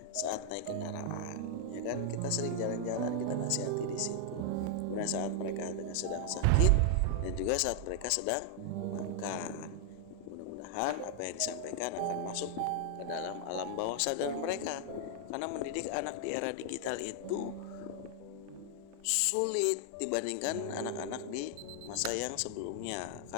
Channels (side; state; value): both; different; correlation 0.00